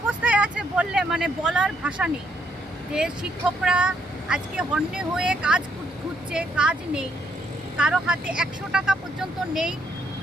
আছে বললে মানে বলার ভাষা নেই। যে শিক্ষকরা আজকে হন্যে হয়ে কাজ খুঁজছে, কাজ নেই, কারো হাতে 100 টাকা পর্যন্ত নেই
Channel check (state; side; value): normal; both; correlation 0.73